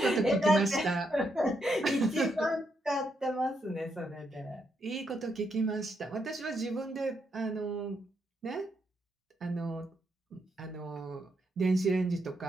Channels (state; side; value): normal; both; correlation 0.79